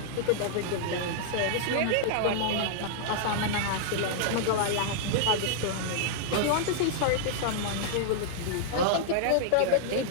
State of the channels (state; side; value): different; both; correlation -0.01